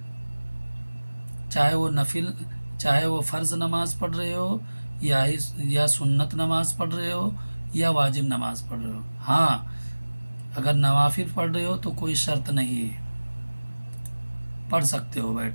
چاہے وہ فرض نماز پڑھ رہے ہو یا سنت نماز پڑھ رہے ہو یا واجب نماز پڑھ رہے ہو۔ ہاں، اگر نوافل پڑھ رہے ہو تو کوئی شرط نہیں ہے، پڑھ سکتے ہو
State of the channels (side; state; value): both; inverted; correlation -1.00